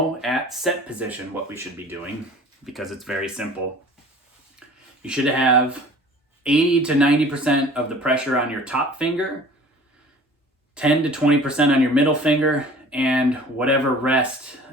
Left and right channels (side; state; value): both; normal; correlation 0.46